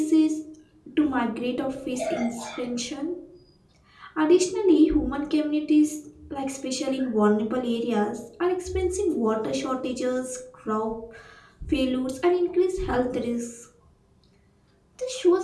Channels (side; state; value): both; identical; correlation 1.00